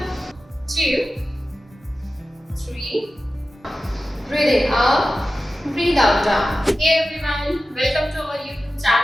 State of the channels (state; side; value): normal; both; correlation 0.94